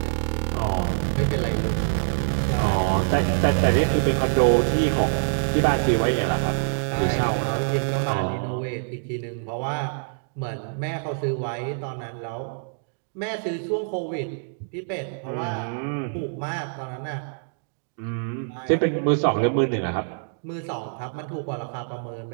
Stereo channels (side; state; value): left; silent; digital silence